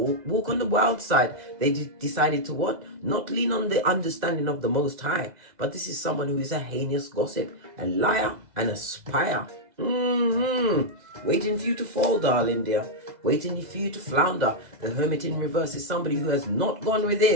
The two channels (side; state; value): left; late; 2.0 ms